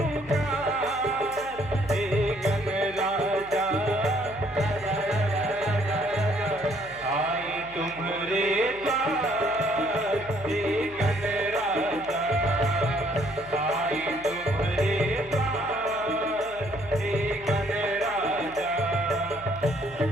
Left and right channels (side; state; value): right; noise; hum, 21 dB below the sound